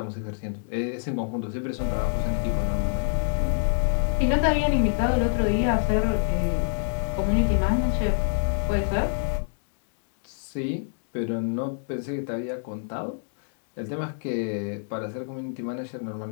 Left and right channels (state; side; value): silent; right; digital silence